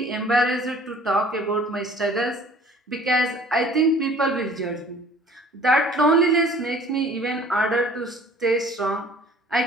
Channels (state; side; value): normal; both; correlation 0.51